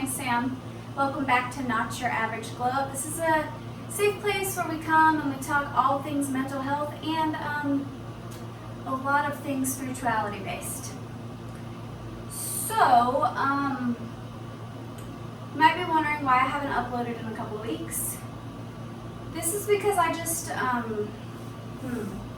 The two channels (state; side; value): identical; both; correlation 1.00